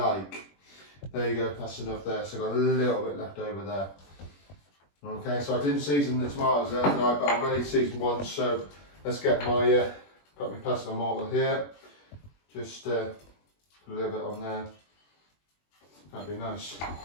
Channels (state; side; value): late; right; 21 ms